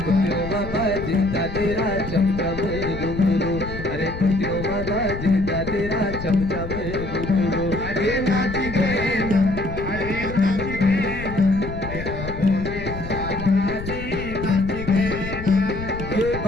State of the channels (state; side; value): noise; left; rumble, 8 dB below the sound